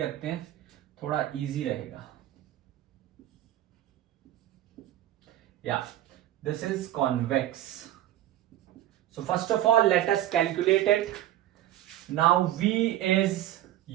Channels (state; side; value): quieter; left; 13.5 dB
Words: रखते हैं, थोड़ा इजी रहेगा. या this is convex. So first of all let us calculate it. Now v is